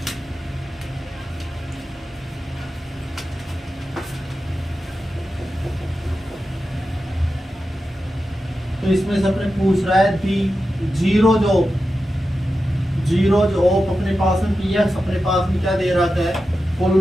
तो इसमें से अपने पूछ रहा है दी जीरो जो अपने पास में पी एक्स अपने पास में क्या दे रखा है,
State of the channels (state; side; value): normal; both; correlation 0.91